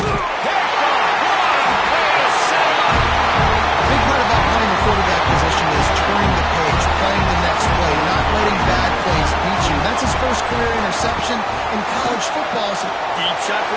Picked off. What a way to set him up. A big part about playing the quarterback position is turning the page, playing the next play, not letting bad plays beat you. That's his first career interception in college football. So deep shot for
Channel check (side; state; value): both; identical; correlation 1.00